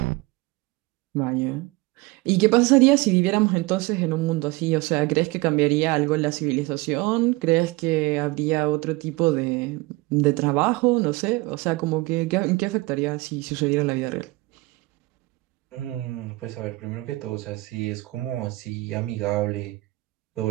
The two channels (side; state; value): left; quieter; 22.3 dB